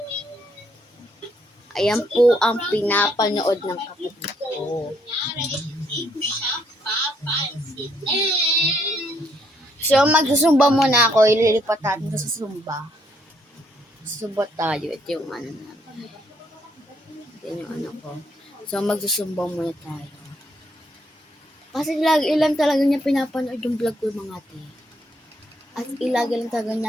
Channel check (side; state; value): both; normal; correlation 0.71